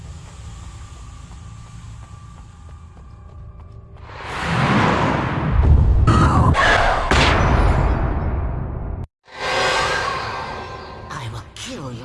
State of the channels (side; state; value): both; identical; correlation 1.00